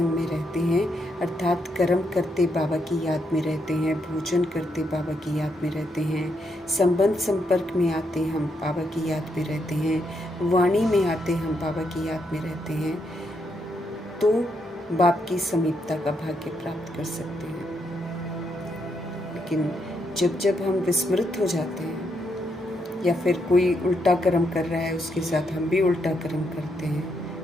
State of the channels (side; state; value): both; normal; correlation 0.79